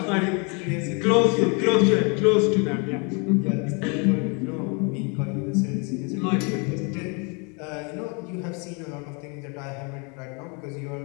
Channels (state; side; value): quieter; right; 33.6 dB